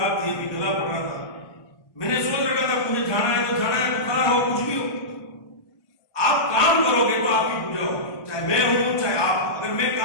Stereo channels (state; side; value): late; right; 1.2 ms